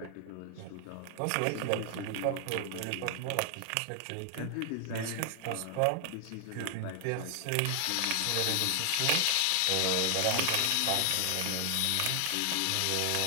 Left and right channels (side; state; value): both; different; correlation 0.00